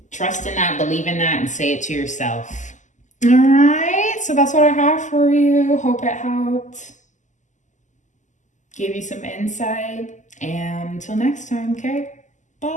trust in that, believe in that, and say it to yourself. All right, so that's what I have for you. Hope it helped. Give you some insight. And until next time, okay?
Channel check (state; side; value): late; right; 0.36 ms